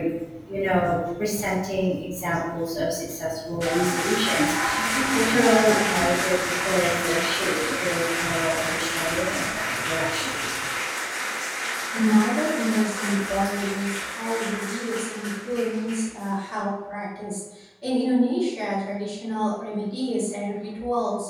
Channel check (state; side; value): identical; both; correlation 1.00